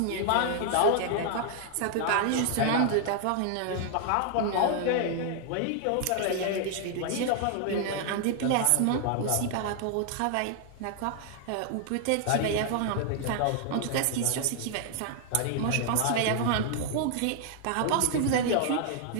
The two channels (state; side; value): different; both; correlation 0.00